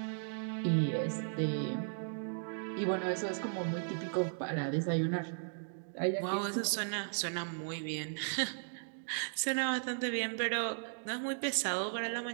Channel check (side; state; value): left; silent; digital silence